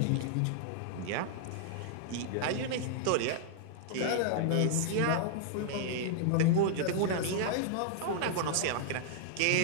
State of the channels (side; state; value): both; different; correlation -0.01